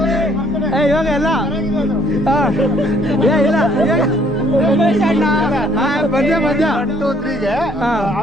ಇವಾಗ ಎಲ್ಲ ಇಲ್ಲ ಉಮೇಶ್ ಅಣ್ಣ ಮಧ್ಯ 1 2 3 ಗೆ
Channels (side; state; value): both; normal; correlation 0.63